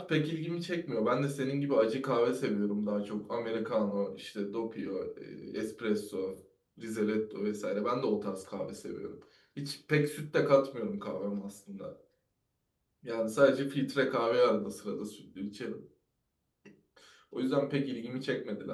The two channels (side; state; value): both; identical; correlation 1.00